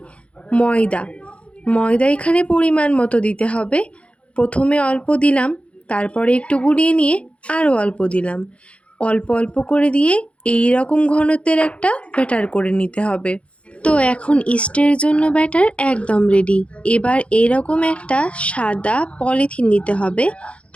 ময়দা এখানে পরিমাণ মতো দিতে হবে। প্রথমে অল্প দিলাম, তারপরে একটু গুলিয়ে নিয়ে আরও অল্প দিলাম। অল্প অল্প করে দিয়ে এই রকম ঘনত্বের একটা ব্যাটার করে নিতে হবে। তো এখন ইস্টের জন্য ব্যাটার একদম রেডি। এবার এরকম একটা সাদা পলিথিন নিতে হবে,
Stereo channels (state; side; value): late; right; 0.061 ms